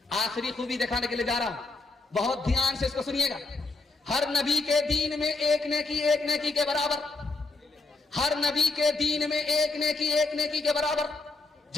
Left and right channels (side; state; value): right; quieter; 3.5 dB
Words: آخری خوبی دکھانے کے لیے جا رہا ہوں, بہت دھیان سے اس کو سنیے گا. ہر نبی کے دین میں ایک نیکی کے برابر, ہر نبی کے دین میں ایک نیکی کے برابر.